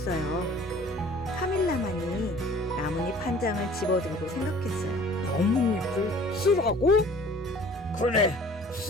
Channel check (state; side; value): normal; both; correlation 0.50